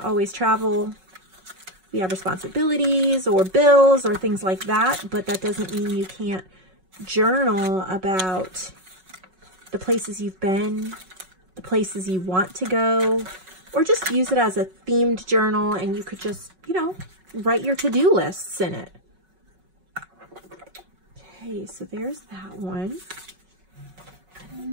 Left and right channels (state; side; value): late; left; 5.4 ms